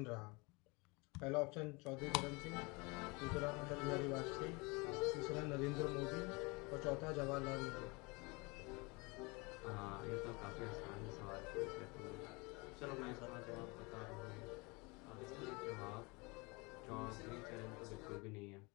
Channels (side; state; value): right; quieter; 27.3 dB